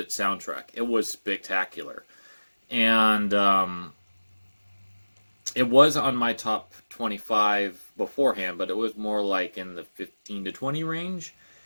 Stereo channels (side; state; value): both; inverted; correlation -1.00